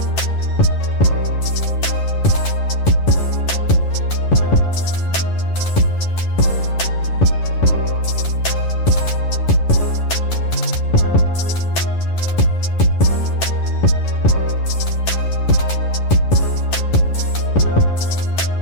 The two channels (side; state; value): right; late; 11 ms